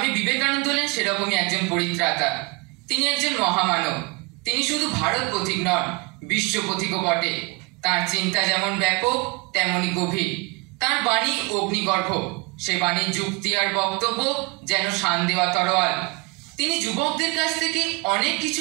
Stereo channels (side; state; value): left; quieter; 28.6 dB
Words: বিবেকানন্দ হলেন সেরকমই একজন পরিত্রাতা। তিনি একজন মহামানব। তিনি শুধু ভারত পথিক নন, বিশ্ব পথিকও বটে। তার চিন্তা যেমন ব্যাপক তেমনি গভীর। তার বাণী অগ্নিগর্ভ, সে বাণীর যুক্তি আর বক্তব্য যেন শান দেওয়া তরোয়াল। তিনি যুবকদের কাছ থেকে অনেক কিছু